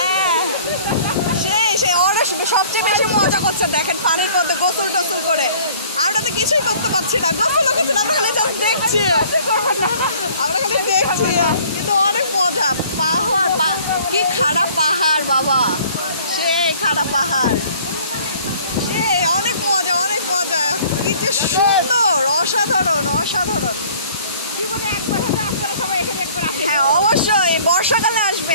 সেই অনেক সবচেয়ে বেশি মজা করছে দেখেন পানির মধ্যে গোসল টোসল করে। আমরা তো কিছুই করতে পারছি না, গোসলও করছি না, আমরা খালি জাস্ট দেখছি, আমরা খালি দেখছি, কিন্তু অনেক মজা। পাহাড় কি খাড়া পাহাড় বাবা, সেই খাড়া পাহাড়, অনেক মজা অনেক মজা। কি যে সুন্দর, অসাধারণ অসাধারণ। হ্যাঁ অবশ্যই বর্ষাকালে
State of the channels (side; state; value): both; inverted; correlation -0.53